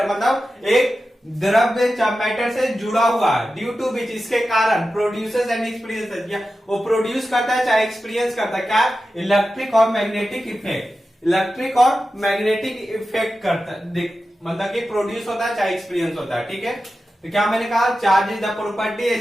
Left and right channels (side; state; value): both; normal; correlation 0.92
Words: मतलब एक द्रव्य मैटर से जुड़ा हुआ है, ड्यू टू विच, इसके कारण, प्रोड्यूसेस एंड एक्सपीरियंस, वो प्रोड्यूस करता है चाहे एक्सपीरियंस करता है, क्या, इलेक्ट्रिक और मैग्नेटिक इफेक्ट, इलेक्ट्रिक और मैग्नेटिक इफेक्ट करता है, मतलब कि प्रोड्यूस होता है चाहे एक्सपीरियंस होता है। ठीक है, तो क्या मैंने कहा, charge is the property